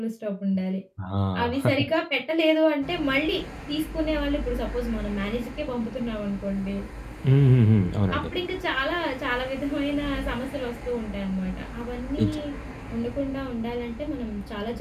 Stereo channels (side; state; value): both; identical; correlation 1.00